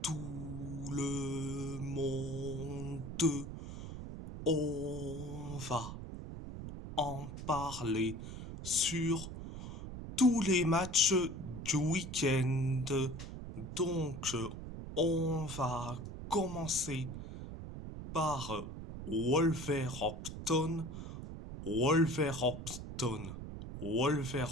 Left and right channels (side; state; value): right; noise; rumble, 9 dB below the sound